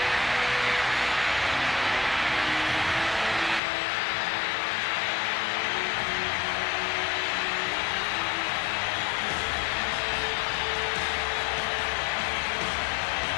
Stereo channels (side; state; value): right; drops out; at 3.6 s